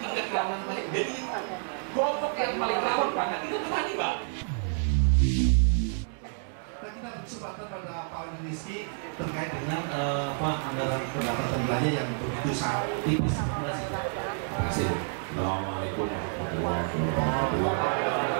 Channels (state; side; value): silent; left; 59 dB below the other